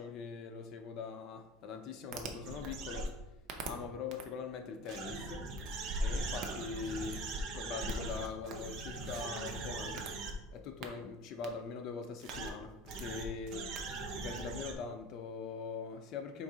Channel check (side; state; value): both; normal; correlation 0.37